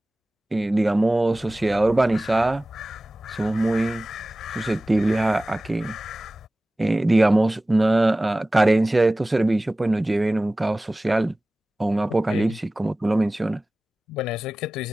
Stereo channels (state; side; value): normal; both; correlation 0.97